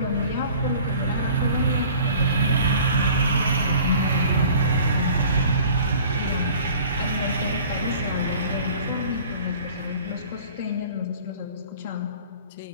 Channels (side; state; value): both; inverted; correlation -0.47